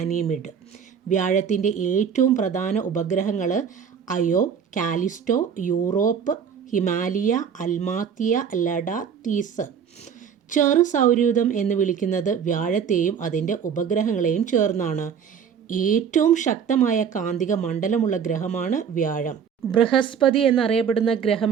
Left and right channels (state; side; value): quieter; left; 7.4 dB